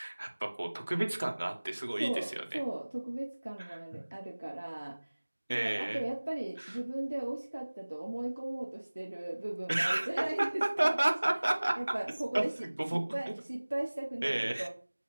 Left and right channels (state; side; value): inverted; both; correlation -1.00